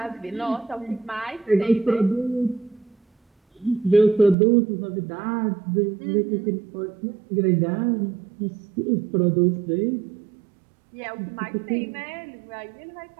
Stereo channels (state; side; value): drops out; left; at 4.4 s